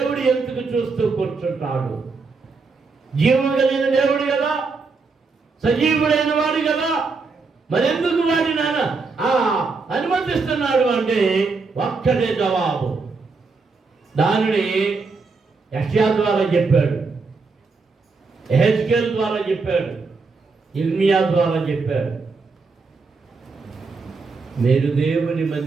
ఎందుకు చూస్తూ కూర్చుంటాడు? జీవం కలిగిన దేవుడు కదా, సజీవుడైన వాడు కదా, మరి ఎందుకు వాడి నాన్న అనుమతిస్తున్నాడు అంటే ఒక్కటే జవాబు. దానిని యెషయా ద్వారా చెప్పాడు, యెహెజ్కేలు ద్వారా చెప్పాడు, ఇర్మియా ద్వారా చెప్పాడు. మీరు దేవుని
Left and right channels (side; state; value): left; quieter; 4.4 dB